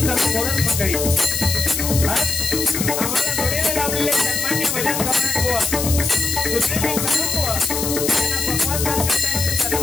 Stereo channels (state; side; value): noise; left; hiss, 2 dB below the sound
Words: कोरस मंडळी आम्हाला जोडीला लावलेले सन्मान्य भजन कमरण बुवा सुनील कदम बुवा यांना पकवान साथ करण्याचे